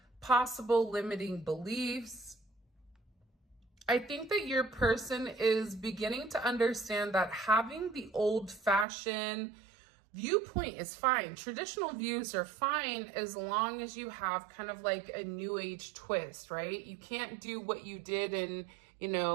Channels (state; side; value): drops out; left; at 8.8 s